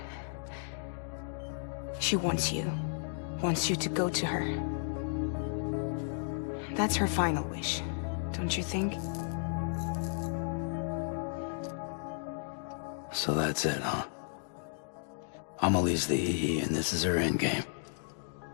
she wants you. Wants you to go to her. That's her final wish, don't you think? So that's it, huh? Amelie's the EE, and this is her endgame.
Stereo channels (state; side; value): silent; right; digital silence